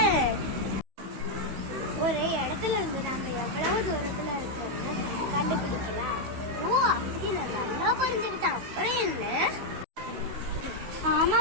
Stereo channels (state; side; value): late; left; 16 ms